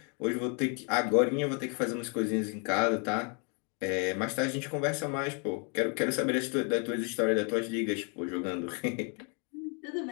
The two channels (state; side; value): quieter; right; 37.3 dB